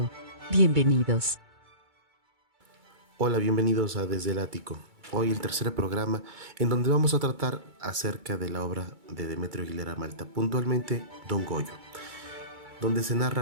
Bienvenidos. Hola, bienvenidos a Desde el Ático. Hoy el tercer programa en donde vamos a tratar acerca de la obra de Demetrio Aguilera Malta, puntualmente Don Goyo, donde se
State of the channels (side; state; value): left; late; 2.3 ms